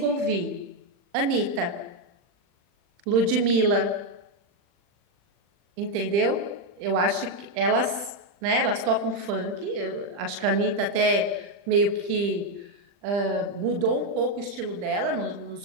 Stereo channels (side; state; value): left; late; 40 ms